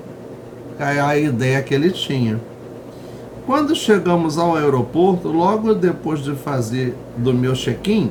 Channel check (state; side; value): identical; both; correlation 1.00